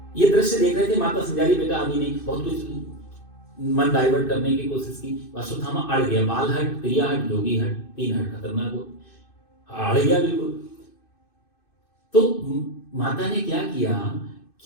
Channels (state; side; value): late; right; 2.6 ms